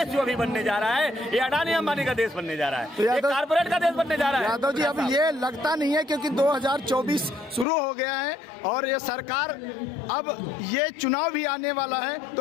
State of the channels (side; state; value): right; drops out; at 7.7 s